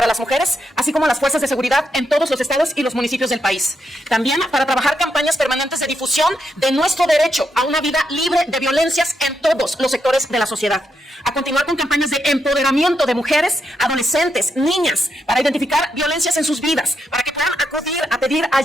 las mujeres, así como las fuerzas de seguridad en todos los estados y los municipios del país. También para trabajar campañas permanentes de difusión de nuestro derecho a una vida libre de violencias en todos los sectores de la sociedad. A continuar con campañas de empoderamiento de mujeres, adolescentes, niñas, para identificar violencias en sus vidas, para que puedan acudir a pedir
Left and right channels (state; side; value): normal; both; correlation 0.82